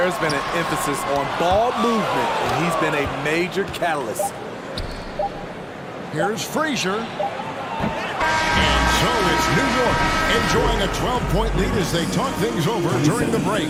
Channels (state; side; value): identical; both; correlation 1.00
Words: been an emphasis on ball movement, and he's been a major catalyst. Here's Frazier. And so it's New York enjoying a 12-point lead as they talk things over during the break.